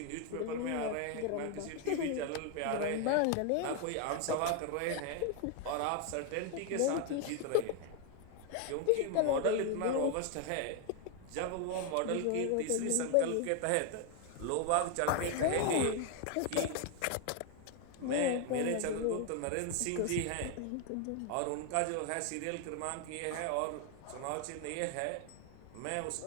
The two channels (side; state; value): both; different; correlation 0.01